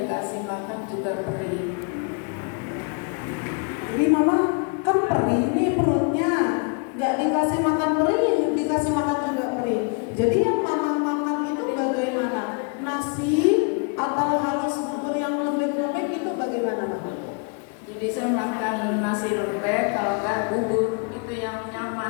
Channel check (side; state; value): right; quieter; 35.8 dB